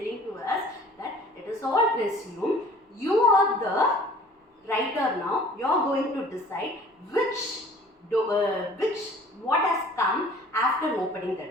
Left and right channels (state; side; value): normal; both; correlation 0.50